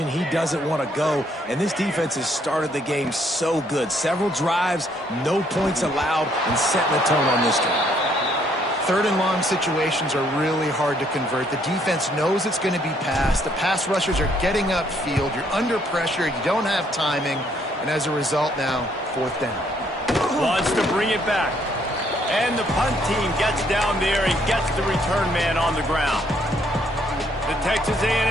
he doesn't want to go. And this defense has started the game so good. Several drives, no points allowed, and setting the tone on this drive. 3rd and long situations are really hard to convert. The defense knows it's going to be passed. The pass rushers are getting upfield. You're under pressure. You don't have timing. And as a result now, 4th down. Wants to bring it back. And the punt team gets down there and gets the return man on the ground. The Texas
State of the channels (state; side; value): normal; both; correlation 0.68